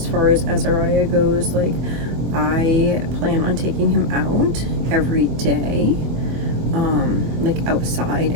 far as Azariah goes, like, I plan on taking him out every day, like outside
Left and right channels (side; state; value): left; late; 24 ms